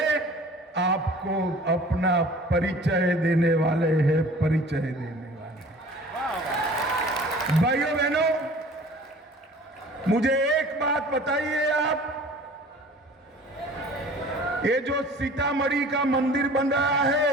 आपको अपना परिचय देने वाले हैं, परिचय देने वाले। भाइयों बहनों, मुझे एक बात बताइए आप, ये जो सीतामढ़ी का मंदिर बन रहा है,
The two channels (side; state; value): both; normal; correlation 0.46